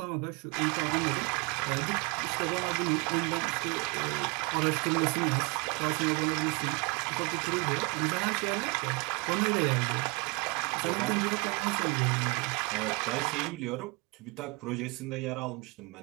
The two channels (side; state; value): left; quieter; 28.2 dB